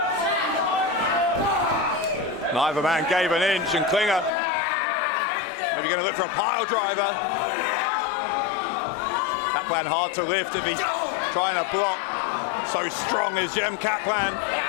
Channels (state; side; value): drops out; right; at 4.3 s